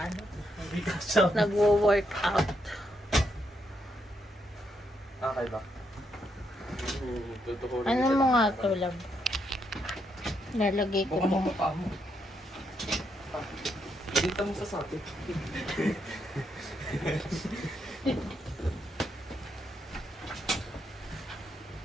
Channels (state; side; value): normal; both; correlation 0.78